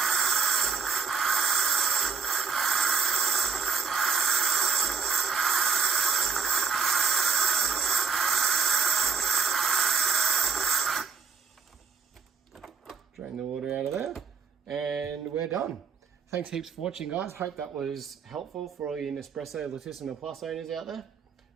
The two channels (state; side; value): quieter; left; 5.7 dB